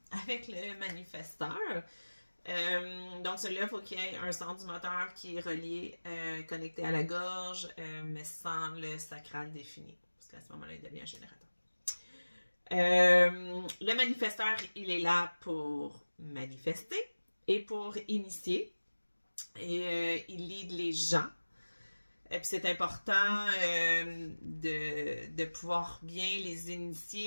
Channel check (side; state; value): both; inverted; correlation -1.00